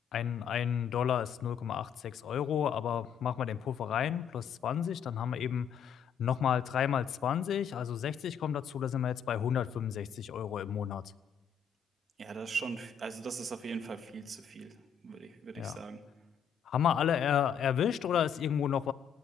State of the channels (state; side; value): quieter; right; 7.7 dB